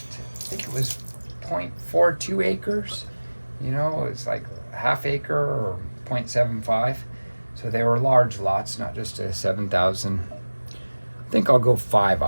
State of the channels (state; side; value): inverted; both; correlation -1.00